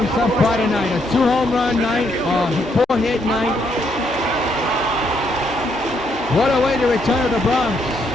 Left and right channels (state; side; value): normal; both; correlation 0.74